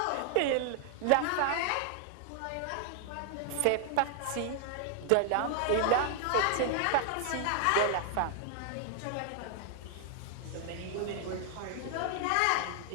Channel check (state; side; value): different; both; correlation 0.00